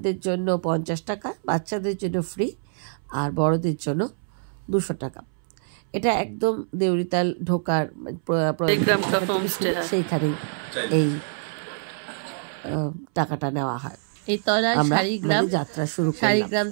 জন্য 50 টাকা, বাচ্চাদের জন্য ফ্রি, আর বড়দের জন্য 200 টাকা। এটা একদম দেউরিতাল ঢোকার সেইখানেই এই টাকাটা নেওয়া হয়। এই তলায় শাড়িগ্রাম যাত্রা শুরু। শাড়িগ্রাম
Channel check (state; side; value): silent; left; 62 dB below the other